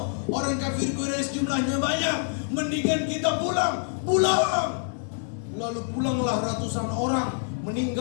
Orang kafir Quraisy jumlahnya banyak, mendingan kita pulang. Lalu pulanglah ratusan orang,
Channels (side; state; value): right; silent; digital silence